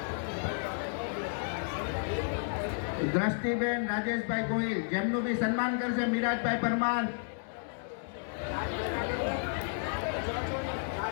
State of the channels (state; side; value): silent; right; digital silence